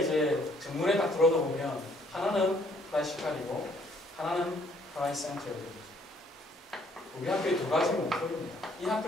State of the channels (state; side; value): normal; both; correlation 0.64